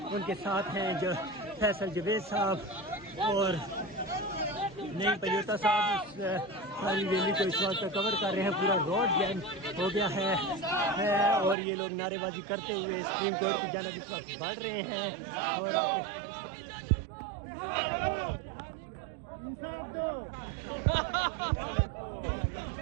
ان کے ساتھ ہیں جو فیصل جوید صاحب اور نئی پلیوتا صاحب اس ساری ریلی کو اس وقت کور کر رہے ہیں. پورا روڈ جیم ہو گیا ہے اور یہ لوگ نعرے بازی کرتے ہوئے سپریم کورٹ کی جانب اس وقت بڑھ رہے ہیں اور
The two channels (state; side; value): drops out; left; at 11.6 s